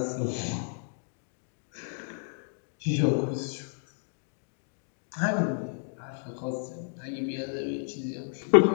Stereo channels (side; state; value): right; silent; digital silence